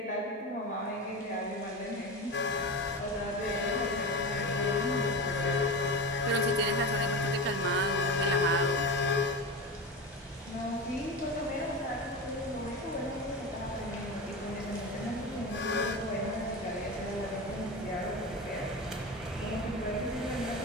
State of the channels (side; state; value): both; normal; correlation 0.24